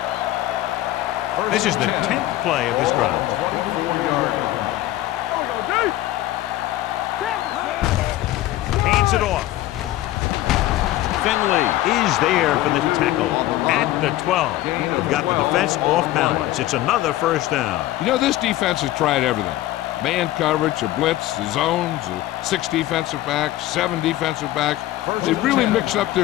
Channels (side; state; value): right; quieter; 15.3 dB